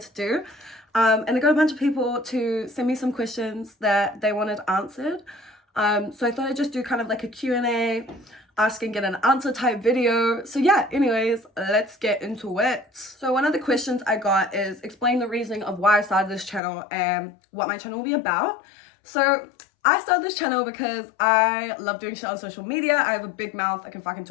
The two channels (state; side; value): drops out; right; at 16.6 s